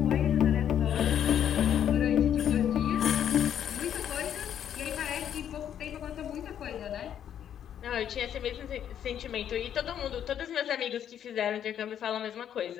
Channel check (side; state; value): right; quieter; 9.6 dB